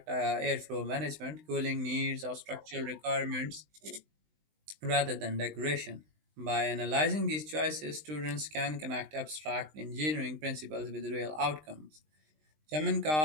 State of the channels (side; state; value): left; late; 20 ms